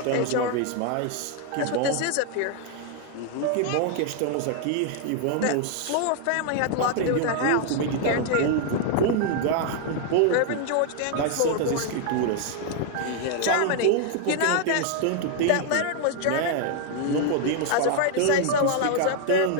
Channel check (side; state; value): both; different; correlation 0.00